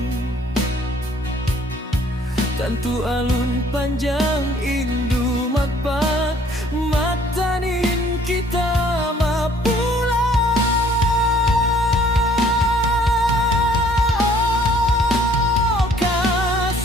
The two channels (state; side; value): normal; both; correlation 0.59